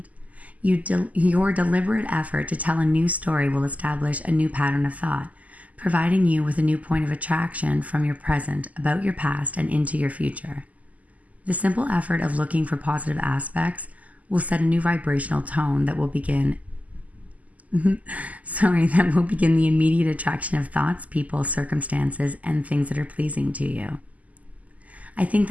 Your deliberate effort to tell a new story will establish a new pattern of thought, providing you with a new point of attraction from your present, about your past, and into your future. The simple effort of looking for positive aspects will set a new vibrational tone that will begin the immediate attraction of thoughts, people, circumstances, and things that are pleasing to you. I think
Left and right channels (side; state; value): left; late; 0.074 ms